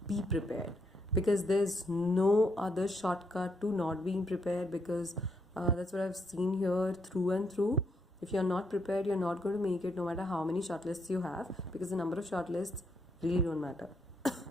be prepared, because there's no other shortcut to not being prepared, because that's what I've seen here through and through. If you're not prepared, you're not going to make it, no matter how many shortlists you have, because the number of shortlists really don't matter.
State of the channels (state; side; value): normal; both; correlation 0.76